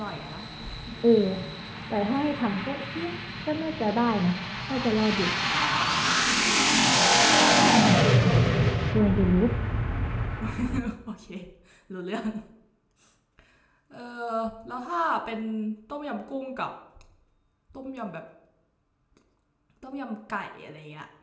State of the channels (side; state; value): both; identical; correlation 1.00